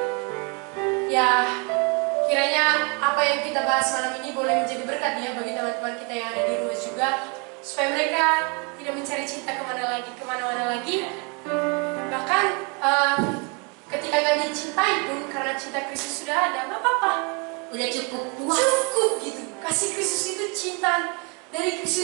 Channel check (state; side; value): quieter; left; 31.8 dB